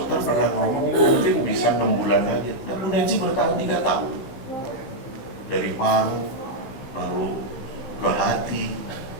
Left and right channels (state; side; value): late; right; 15 ms